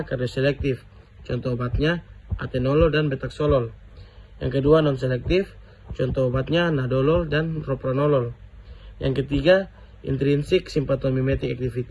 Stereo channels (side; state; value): both; identical; correlation 1.00